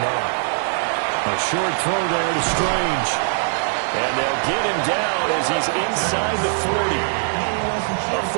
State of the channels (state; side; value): silent; left; digital silence